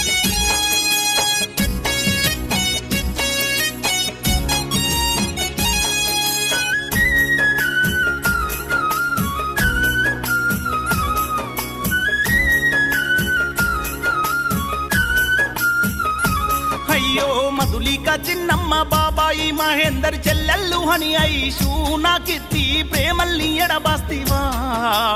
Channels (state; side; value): identical; both; correlation 1.00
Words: అయ్యో మధులిక, చిన్నమ్మ బాబాయి, మహేందర్ చెల్లెల్లు హని ఐషు, నా కీర్తి ప్రేమల్ని ఎడబాస్తివా.